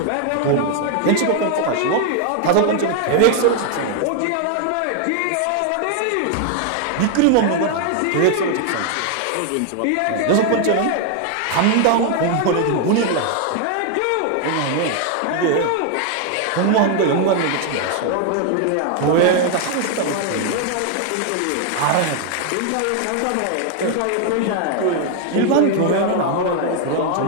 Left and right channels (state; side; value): different; both; correlation 0.00